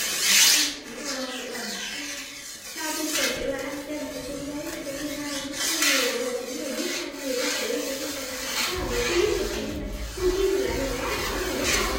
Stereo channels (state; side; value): identical; both; correlation 1.00